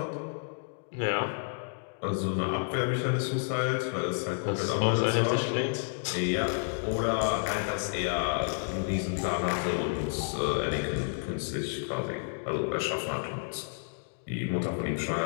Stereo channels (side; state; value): right; silent; digital silence